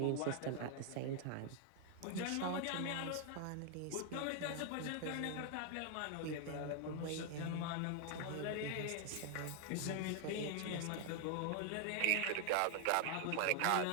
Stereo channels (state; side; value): different; both; correlation 0.00